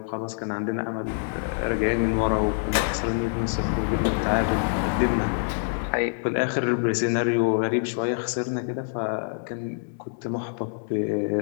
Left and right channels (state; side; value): silent; right; digital silence